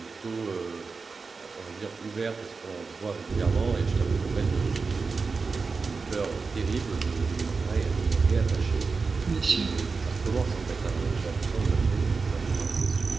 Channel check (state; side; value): quieter; left; 4.5 dB